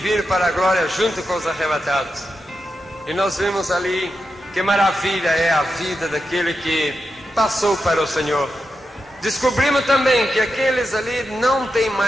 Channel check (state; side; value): normal; both; correlation 0.88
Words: para a glória junto com os arrebatados. E nós vimos ali que maravilha é a vida daquele que passou para o Senhor. Descobrimos também que aqueles ali não têm